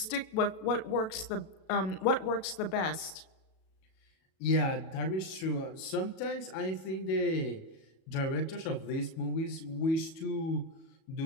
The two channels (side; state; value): right; late; 37 ms